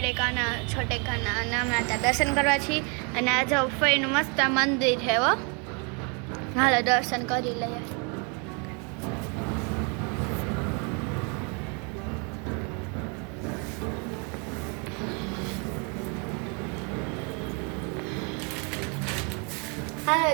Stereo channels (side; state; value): left; quieter; 34.7 dB